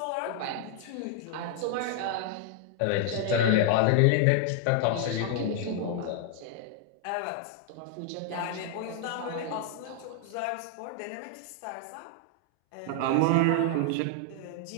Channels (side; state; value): both; different; correlation 0.00